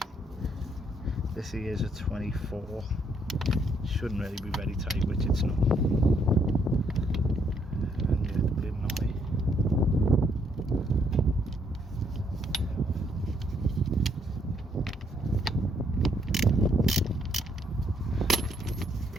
This here is a 24. Shouldn't really be very tight, which it's not. And yeah, the bleeding on me.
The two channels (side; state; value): both; normal; correlation 0.71